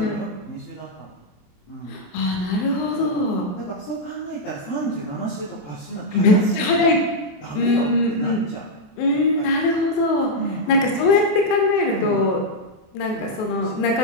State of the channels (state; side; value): late; right; 28 ms